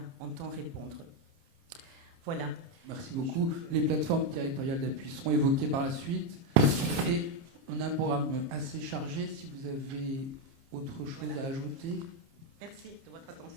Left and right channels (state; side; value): late; left; 30 ms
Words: entend répondre. Voilà. Merci beaucoup. Les plateformes territoriales d'appui seront évoquées par la suite. Et on a un programme assez chargé. Si vous avez autre chose à ajouter. Merci de votre